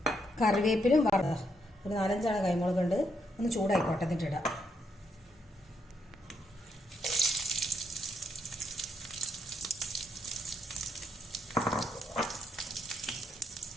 കറിവേപ്പിലും ഒരു 4-5 കായ്മുളകുണ്ട്. ഒന്ന് ചൂടായിക്കോട്ടെ, എന്നിട്ടിടാം.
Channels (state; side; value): normal; both; correlation 0.77